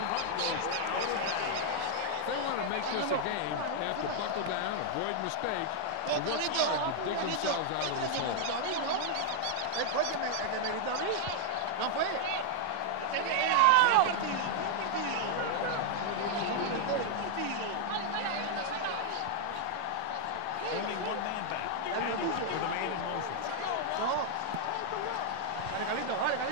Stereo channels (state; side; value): different; both; correlation 0.00